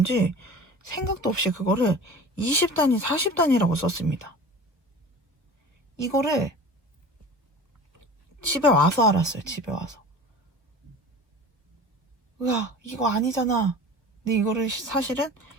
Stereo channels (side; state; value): left; late; 1.3 ms